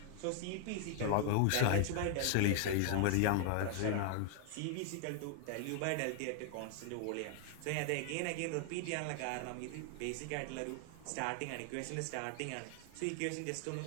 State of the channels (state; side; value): different; both; correlation 0.00